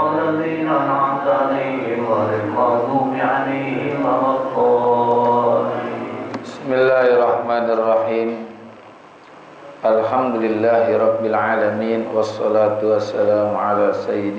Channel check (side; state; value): both; identical; correlation 1.00